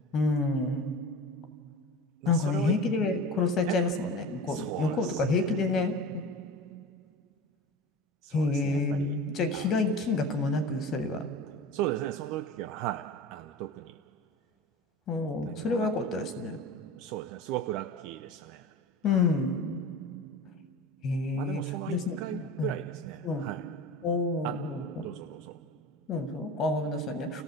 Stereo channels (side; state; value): both; normal; correlation 0.34